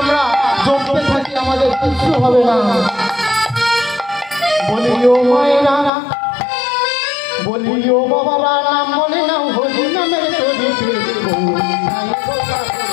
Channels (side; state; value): right; drops out; at 5.9 s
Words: আমরা চলতে থাকি আমাদের কিছু হবে না। বলিও মায়েরা, বলিও বাবারা, নাম বলে নাও হরি নামের তরিতে